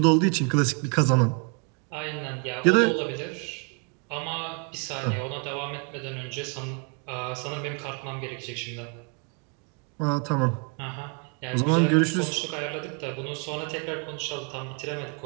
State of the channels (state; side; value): quieter; left; 37.9 dB